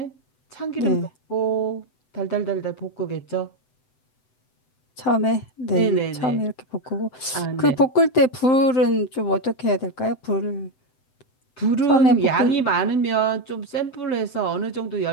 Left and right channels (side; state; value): right; late; 7.7 ms